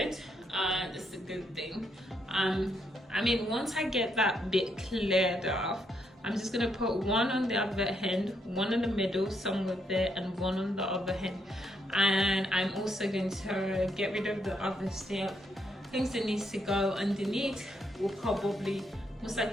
It's a good thing. I mean, once I get that bit cleared off, I'm just gonna put one on the other end, one in the middle somewhere there, and one on the other end. And I'm also going to get rid of the other stuff. Things that needs to go underneath will probably most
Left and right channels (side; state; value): both; normal; correlation 0.76